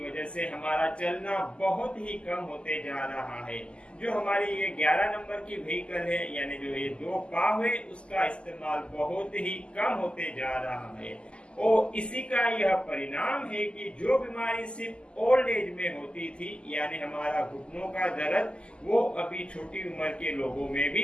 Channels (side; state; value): right; late; 0.052 ms